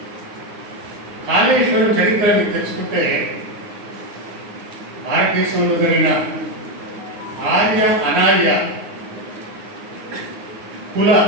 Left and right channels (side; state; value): left; late; 9.8 ms